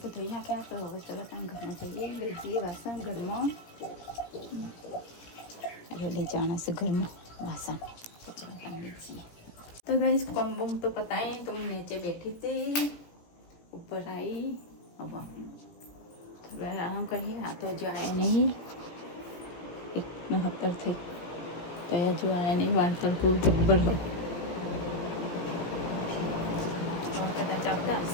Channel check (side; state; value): right; late; 17 ms